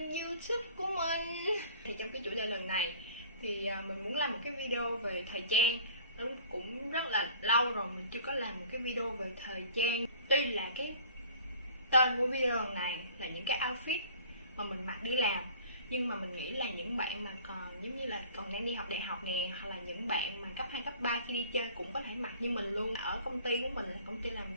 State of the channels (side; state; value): both; inverted; correlation -0.48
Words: YouTube của mình. Thì trong cái chủ đề lần này thì mình muốn làm một cái video về thời trang. Nó cũng rất là lâu rồi mình chưa có làm một cái video về thời trang. Tuy là cái tên của video lần này là những cái outfit mà mình mặc đi làm, nhưng mà mình nghĩ là những bạn mà còn giống như là còn đang đi học đại học nè, hoặc là những bạn mà cấp 2, cấp 3 khi đi chơi cũng có thể mặc như mình luôn. Ở công ty của mình là công ty làm